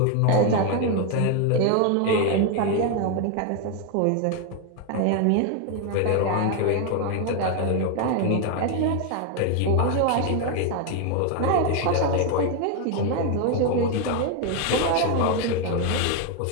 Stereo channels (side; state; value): both; different; correlation 0.01